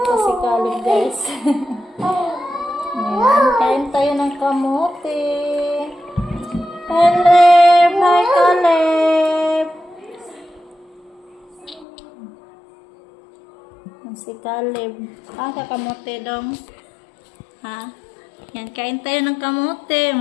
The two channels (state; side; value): drops out; right; at 11.9 s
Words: si Caleb, guys. Ayan, kain tayo ng kamote. Caleb! Hi, Caleb! Si Caleb. Kakamote dong. Ha? Yan, kain tayo ng kamote.